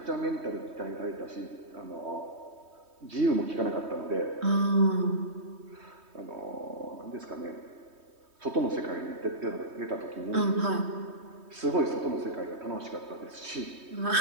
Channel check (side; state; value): left; late; 3.2 ms